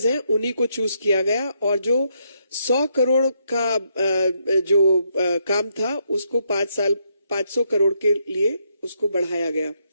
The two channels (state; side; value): inverted; both; correlation -0.77